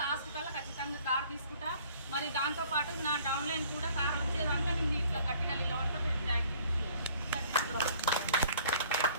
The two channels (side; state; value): both; inverted; correlation -0.55